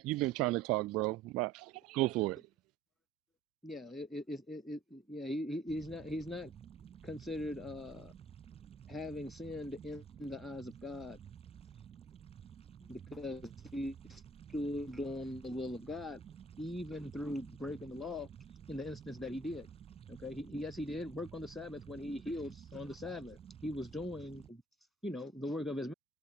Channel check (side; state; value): left; quieter; 3.3 dB